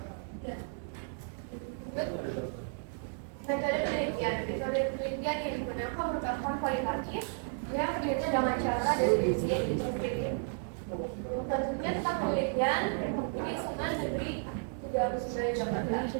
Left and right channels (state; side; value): silent; left; 56 dB below the other